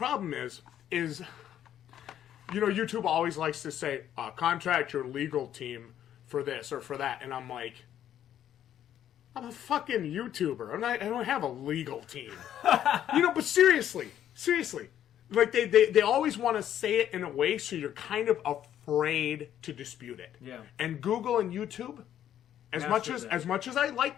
is, YouTube always likes to say, contact your legal team for this or for that. And I'm like, I'm a fucking YouTuber. I don't have a legal team. But seriously. They always want to say it in a way so you're kind of afraid to dispute it. Yeah. And Google and YouTube, as much as I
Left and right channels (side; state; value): right; quieter; 10.7 dB